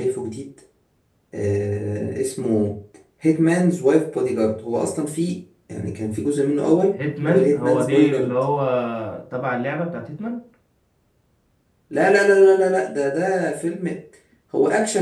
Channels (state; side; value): identical; both; correlation 1.00